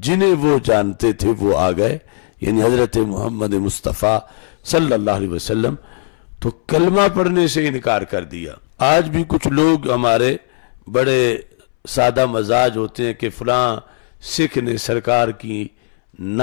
جنہیں وہ جانتے تھے وہ آ گئے، یعنی حضرت محمد مصطفیٰ صلی اللہ علیہ وسلم، تو کلمہ پڑھنے سے انکار کر دیا۔ آج بھی کچھ لوگ ہمارے بڑے سادہ مزاج ہوتے ہیں کہ فلاں سکھ نے سرکار کی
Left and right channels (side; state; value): right; silent; 67 dB below the other